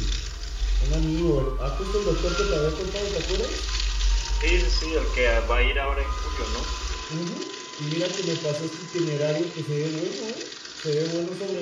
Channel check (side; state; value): both; identical; correlation 1.00